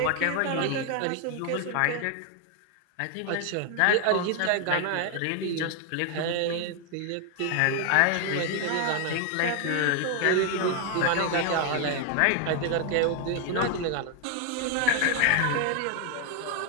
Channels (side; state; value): both; different; correlation 0.01